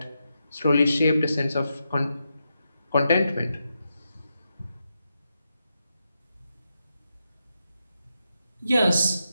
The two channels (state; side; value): inverted; both; correlation -0.86